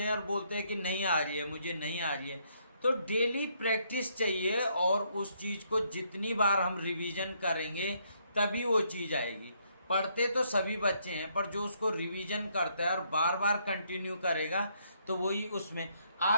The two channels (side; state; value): both; inverted; correlation -0.72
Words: हैं और बोलते हैं कि नहीं आ रही है, मुझे नहीं आ रही है। तो डेली प्रैक्टिस चाहिए और उस चीज़ को जितनी बार हम रिवीजन करेंगे तभी वो चीज़ आएगी। पढ़ते तो सभी बच्चे हैं पर जो उसको रिवीजन करता है और बार बार कंटिन्यू करेगा तो वही उसमें।